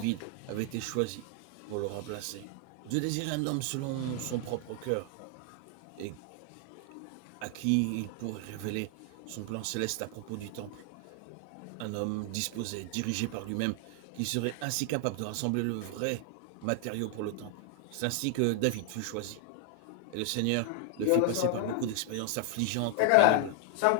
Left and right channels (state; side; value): different; both; correlation 0.00